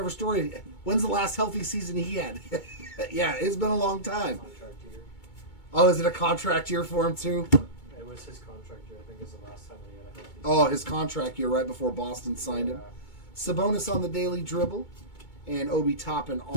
Story, when's the last healthy season he had? Yeah, it's been a long time. Contract year. Oh, is it a contract year for him too? It was his contract year. I think is the last time he had a healthy Oh, his contract year right before Boston signed him. Yeah. Sabonis on the daily dribble and Obi Toppin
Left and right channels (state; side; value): late; right; 2.2 ms